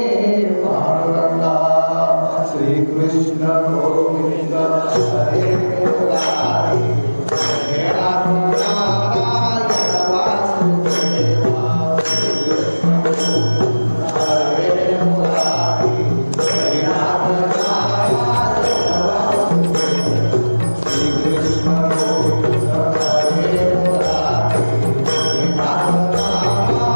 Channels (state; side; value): inverted; both; correlation -1.00